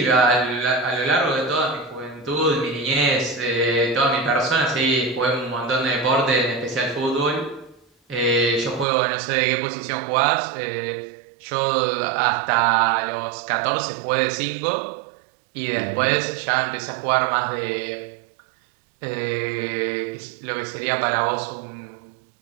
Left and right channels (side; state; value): left; drops out; at 8.8 s